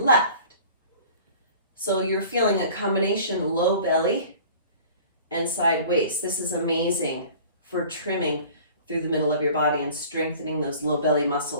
So you're feeling a combination low belly and side waist. This is amazing for trimming through the middle of your body and strengthening those low belly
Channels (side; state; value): both; inverted; correlation -0.45